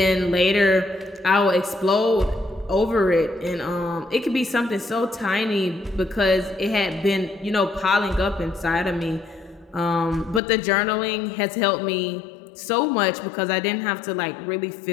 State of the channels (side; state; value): right; drops out; at 10.4 s